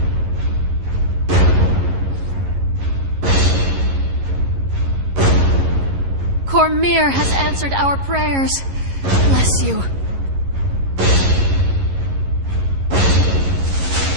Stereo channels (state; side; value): late; left; 11 ms